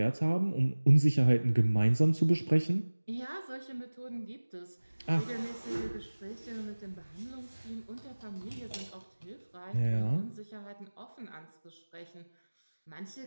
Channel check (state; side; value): inverted; both; correlation -1.00